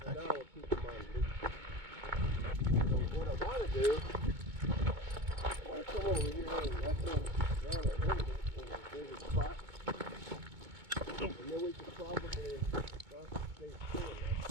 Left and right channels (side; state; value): left; late; 2.2 ms